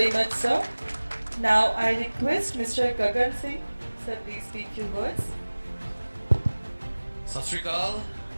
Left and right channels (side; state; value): both; inverted; correlation -1.00